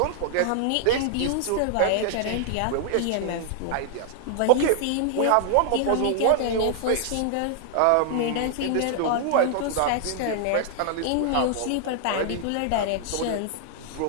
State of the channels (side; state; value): both; different; correlation -0.01